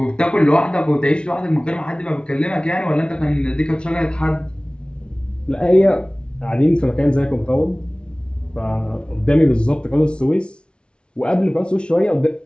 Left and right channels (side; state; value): right; late; 0.057 ms